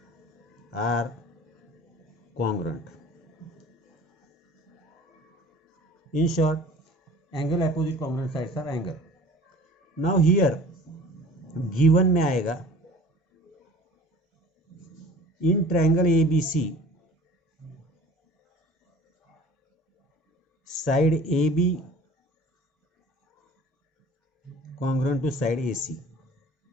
are congruent. In short, angle opposite congruent sides are angle. Now here given में आएगा in triangle ABC side AB congruent to side AC.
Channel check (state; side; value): normal; both; correlation 0.45